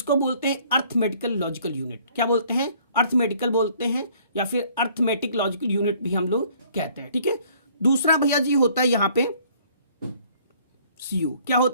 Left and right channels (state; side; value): inverted; both; correlation -0.59